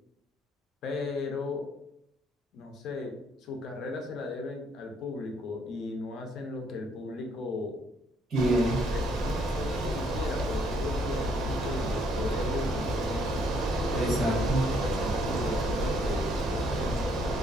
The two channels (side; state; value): both; normal; correlation 0.68